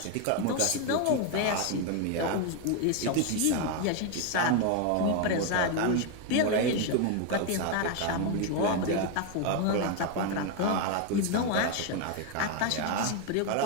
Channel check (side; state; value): both; different; correlation 0.01